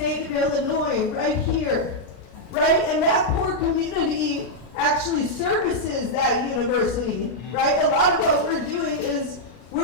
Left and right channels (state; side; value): late; right; 33 ms